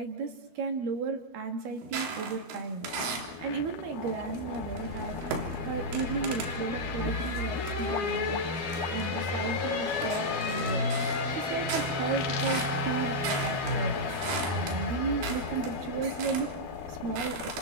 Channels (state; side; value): late; left; 12 ms